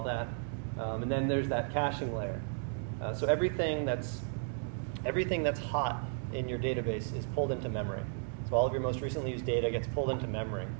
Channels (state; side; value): silent; left; digital silence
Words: that. And then there's that caching layer. So everything that's hot in your database is pulled into memory. So all of your most recently used data gets pulled into memory.